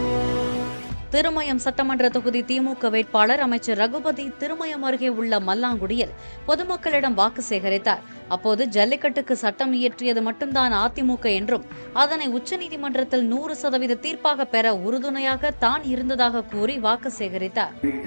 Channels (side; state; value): both; inverted; correlation -1.00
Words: திருமயம் சட்டமன்ற தொகுதி திமுக வேட்பாளர் அமைச்சர் ரகுபதி திருமயம் அருகே உள்ள மல்லாங்குடியில் பொதுமக்களிடம் வாக்கு சேகரித்தார். அப்போது ஜல்லிக்கட்டுக்கு சட்டம் இயற்றியது மட்டும்தான் அதிமுக என்றும் அதனை உச்சநீதிமன்றத்தில் 100% தீர்ப்பாக பெற உறுதுணையாக தான் இருந்ததாக கூறி வாக்கு சேகரித்தார்.